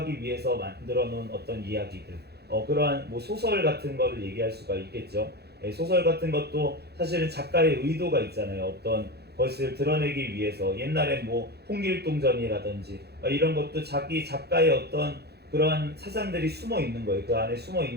위해서 만들어 놓은 어떤 이야기들 그러한 뭐 소설 같은 거를 얘기할 수가 있겠죠. 소설 같은 것도 사실은 작가의 의도가 있잖아요. 어떤 것을 드러내기 위해서 옛날에 뭐 홍길동전이라든지 이런 것도 자기 작가의 어떤 그러한 사상들이 숨어 있는 거예요. 그 안에 숨어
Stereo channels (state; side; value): late; left; 0.48 ms